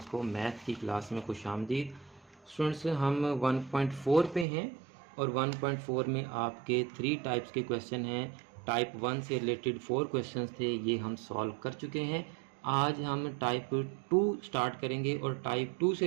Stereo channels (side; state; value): left; drops out; at 4.5 s